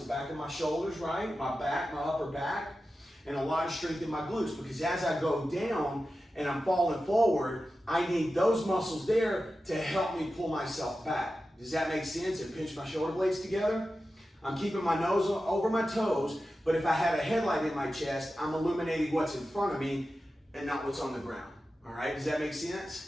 back of my shoulders, right? My back, my upper back, and a lot of strength in my glutes. Because as I go down and I'm falling forward, I need those muscles there to help me pull myself back. Does that make sense? And pinch my shoulder blades together. I'm keeping my nose over my toes, but if I have a headlight in my chest, I'm illuminating what's in front of me and not what's on the ground. All right, does that make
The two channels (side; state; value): both; normal; correlation 0.93